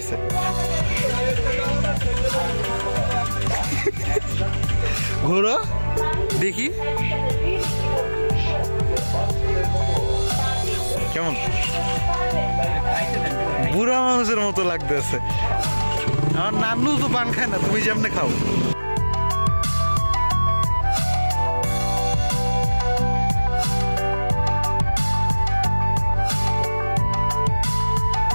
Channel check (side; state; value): both; inverted; correlation -1.00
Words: ঘোরো দেখি কেমন, বুড়া মানুষের মতো লাগতেছে। আমার নানু তো পান খায় না, তুমি যেমনে খাও।